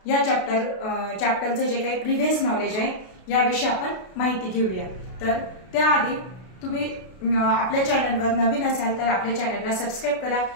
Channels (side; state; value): right; late; 32 ms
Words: या चॅप्टरचं जे काही प्रिव्हियस नॉलेज आहे याविषयी आपण माहिती घेऊया। तर त्याआधी तुम्ही आपल्या चॅनलवर नवीन असाल तर आपल्या चॅनलला सबस्क्राइब करा,